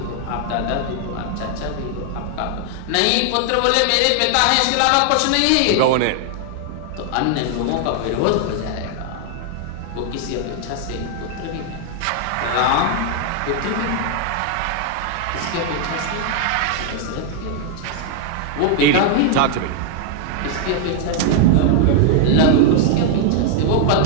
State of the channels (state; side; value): different; both; correlation 0.00